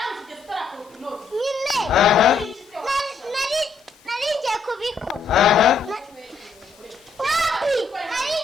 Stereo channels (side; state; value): right; quieter; 4.2 dB